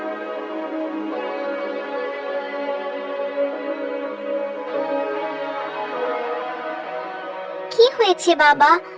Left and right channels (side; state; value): both; identical; correlation 1.00